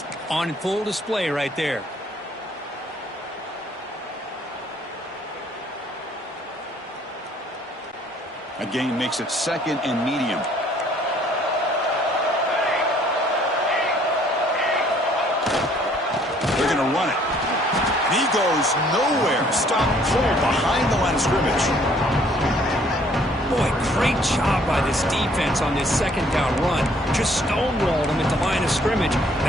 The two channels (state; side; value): normal; both; correlation 0.61